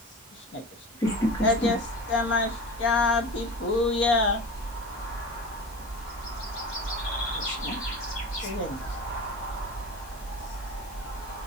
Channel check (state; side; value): normal; both; correlation 0.32